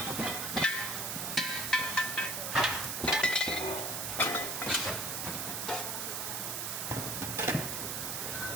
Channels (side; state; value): right; noise; hiss, 2 dB below the sound